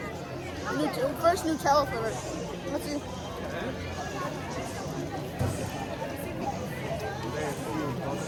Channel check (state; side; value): identical; both; correlation 1.00